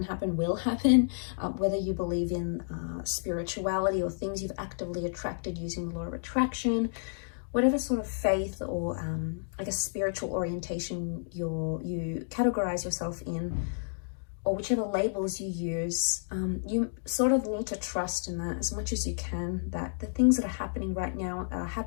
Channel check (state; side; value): silent; right; digital silence